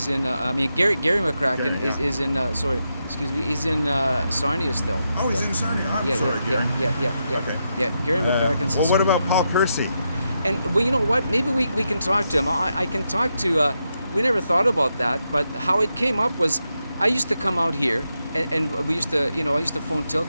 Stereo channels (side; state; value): both; inverted; correlation -0.85